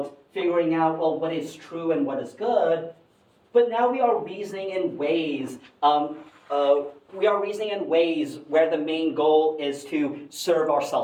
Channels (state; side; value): identical; both; correlation 1.00